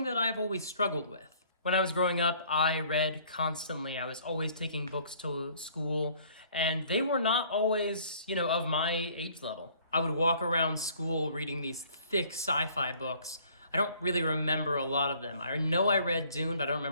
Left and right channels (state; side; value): inverted; both; correlation -0.57